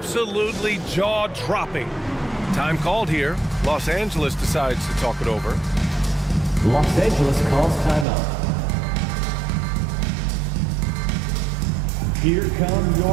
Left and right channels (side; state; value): left; drops out; at 8.1 s